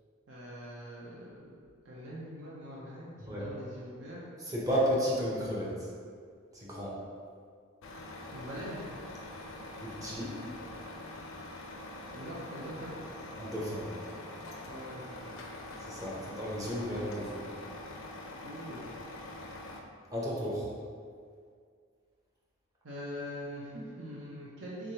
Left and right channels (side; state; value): both; normal; correlation 0.35